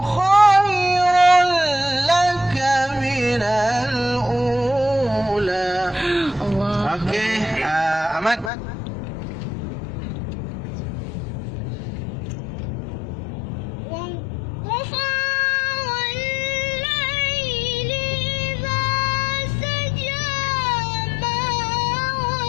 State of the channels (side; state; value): right; drops out; at 8.5 s